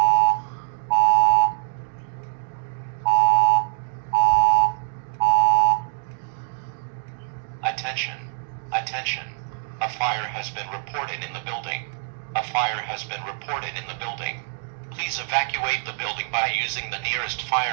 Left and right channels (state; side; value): silent; left; 63 dB below the other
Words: Attention. Attention. A fire has been reported in the building. A fire has been reported in the building. Please evacuate the building by using the nearest